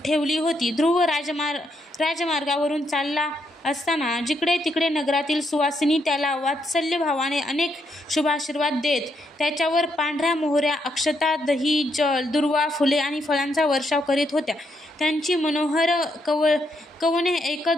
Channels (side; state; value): both; normal; correlation 0.77